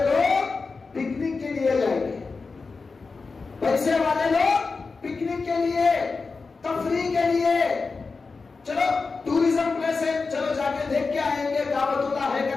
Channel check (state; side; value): quieter; right; 4.3 dB